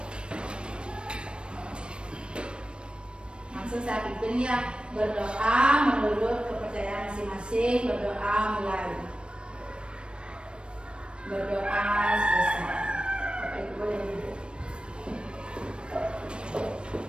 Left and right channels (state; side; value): late; left; 0.056 ms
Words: Langsung saya pimpin ya, berdoa menurut kepercayaan masing-masing. Berdoa mulai. Berdoa selesai. Bapak Ibu boleh duduk.